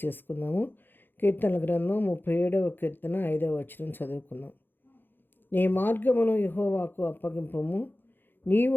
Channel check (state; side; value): late; right; 0.097 ms